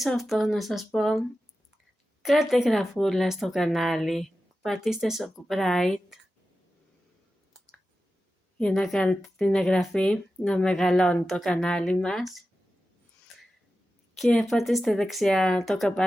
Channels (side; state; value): both; normal; correlation 0.93